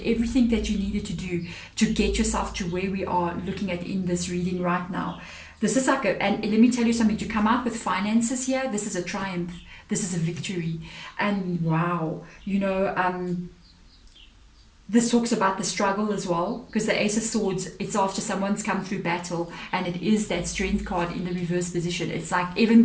everything that you needed to do to get yourself to where we are looking at in this reading right now. This is like and let me tell you something, to come out with finances here, this is a triumph, this is a victory. And wow, this talks about the struggle as well, because the Ace of Swords, it's after someone's come through battle, and it is that Strength card in the reverse position. It's like even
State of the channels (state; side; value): identical; both; correlation 1.00